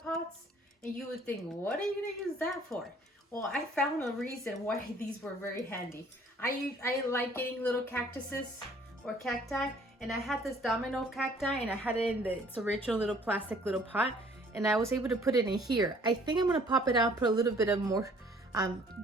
and you would think, what are you gonna use that for? Well, I found a reason why these were very handy. I like getting little cactuses or cacti, and I had this domino cacti, and I had it in its original little plastic little pot, and I was able to put it in here. I think I'm gonna pop it out, put a little bit of more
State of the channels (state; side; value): normal; both; correlation 0.57